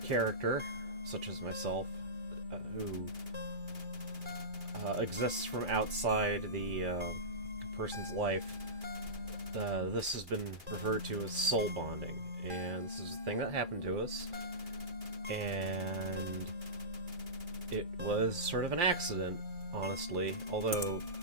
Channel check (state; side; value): late; left; 2.3 ms